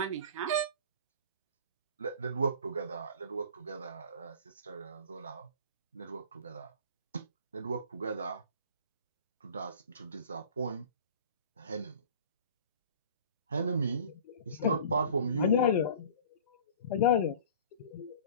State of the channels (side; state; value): both; inverted; correlation -0.42